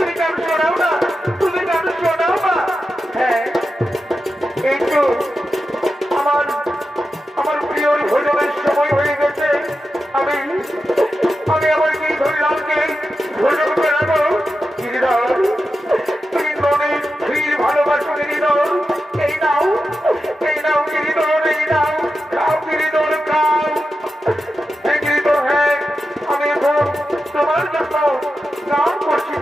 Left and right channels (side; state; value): both; normal; correlation 0.90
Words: গান শোনাও না, তুমি গান শোনাও না। হ্যাঁ, এই তো আমার প্রিয় ভোজনের সময় হয়ে গেছে। আমি আমার গিরিধর লালকে ভোজন করাবো। গিরিধর, তুমি মনে ফির ভালোবাসো গিরিধর। এই নাও গিরিধর, এই নাও, খাও গিরিধর, খাও। হ্যাঁ গিরিধর, হ্যাঁ, আমি এখন তোমার জন্য গান করছি